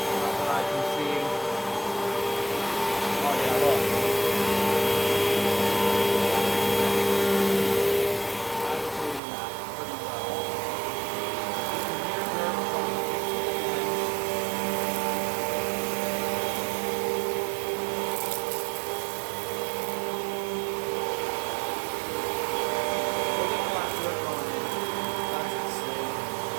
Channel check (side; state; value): left; drops out; at 9.2 s